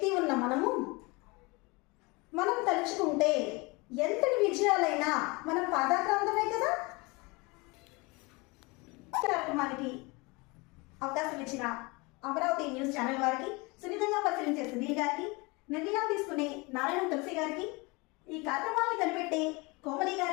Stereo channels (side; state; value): right; quieter; 26.2 dB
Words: ఉన్న మనం తలుచుకుంటే ఎంతటి విజయాలైనా మనం పాదాక్రాంతమే కదా. కార్యక్రమానికి అవకాశం ఇచ్చిన అమరావతి న్యూస్ ఛానల్ వారికి, సున్నితంగా పరిశీలించే సునీల్ గారికి, నిర్ణయాలు తీసుకునే నారాయణ తులసి గారికి, ఈ కార్యక్రమాన్ని కనిపెట్టే కోమలి